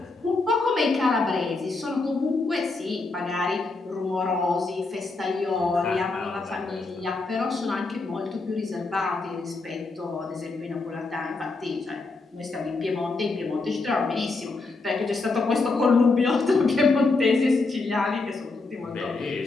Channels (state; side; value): quieter; right; 3.7 dB